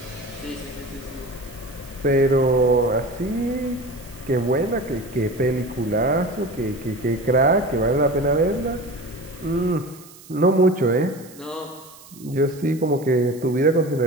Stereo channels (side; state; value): right; noise; hiss, 21 dB below the sound